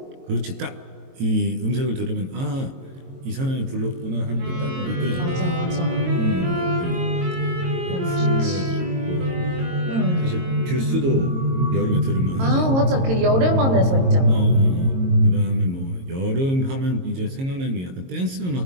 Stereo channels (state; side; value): late; left; 22 ms